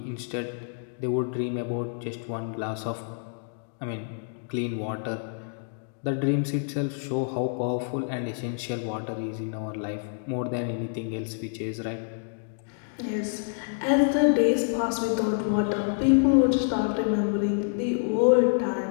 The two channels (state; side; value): silent; right; digital silence